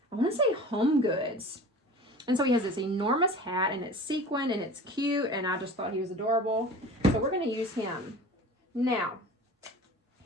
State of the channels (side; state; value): both; normal; correlation 0.39